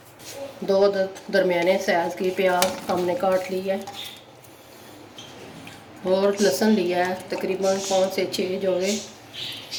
दो दरमियाने साइज़ की प्याज हमने काट ली है और लहसुन लिया है तकरीबन 5 से 6 जोड़े।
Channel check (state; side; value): identical; both; correlation 1.00